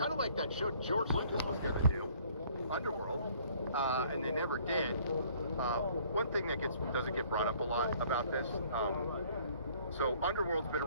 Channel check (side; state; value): both; inverted; correlation -0.59